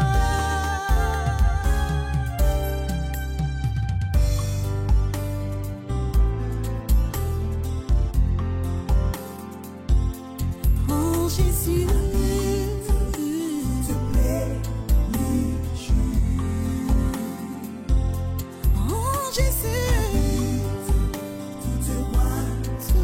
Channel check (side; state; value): both; identical; correlation 1.00